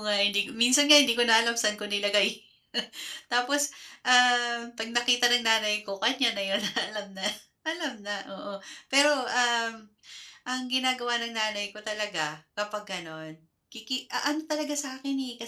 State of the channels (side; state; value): both; identical; correlation 1.00